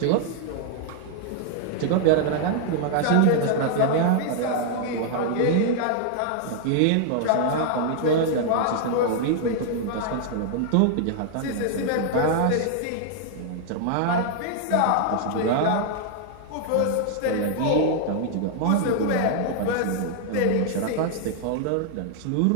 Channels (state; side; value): different; both; correlation 0.00